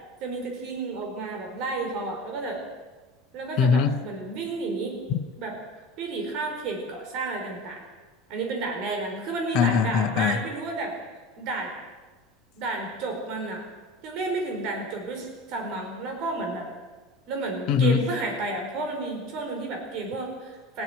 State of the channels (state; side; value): normal; both; correlation 0.34